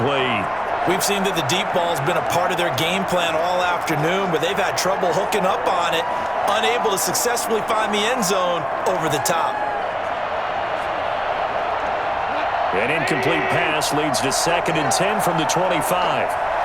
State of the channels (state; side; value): identical; both; correlation 1.00